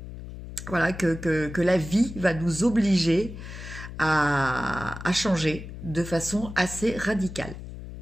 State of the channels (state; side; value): noise; left; hum, 11 dB below the sound